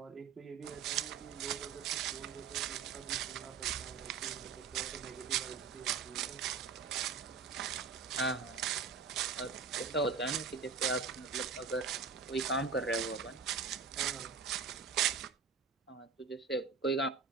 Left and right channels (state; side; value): quieter; left; 5.4 dB